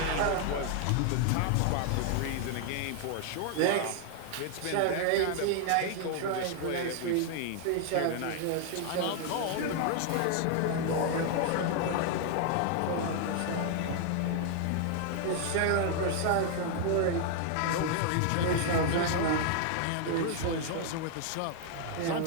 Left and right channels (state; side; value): different; both; correlation 0.00